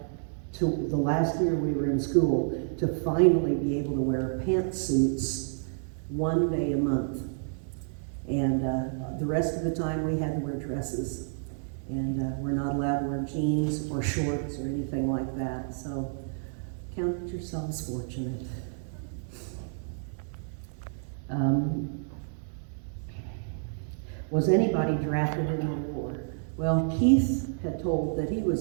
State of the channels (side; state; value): left; silent; 58 dB below the other